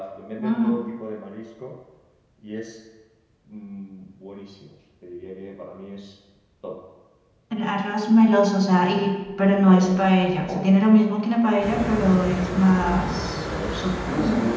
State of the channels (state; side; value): identical; both; correlation 1.00